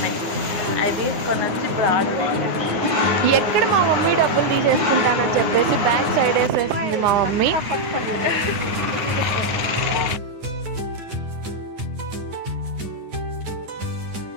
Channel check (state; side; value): late; left; 9.5 ms